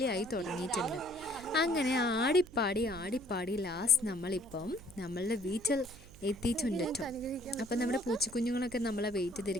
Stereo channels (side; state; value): right; noise; hum, 21 dB below the sound